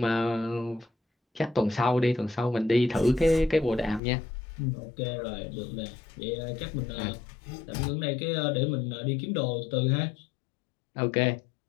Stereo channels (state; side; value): drops out; right; at 4.0 s